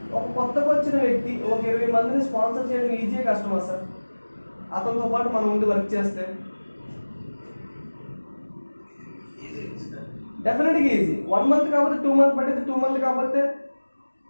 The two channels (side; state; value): both; inverted; correlation -1.00